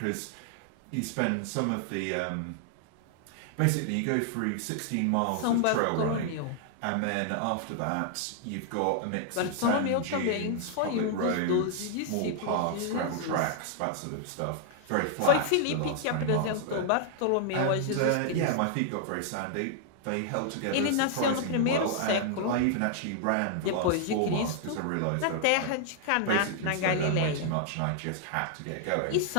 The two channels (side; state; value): both; different; correlation 0.00